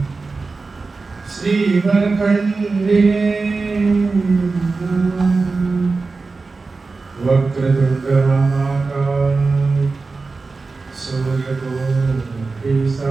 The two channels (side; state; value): left; quieter; 4.0 dB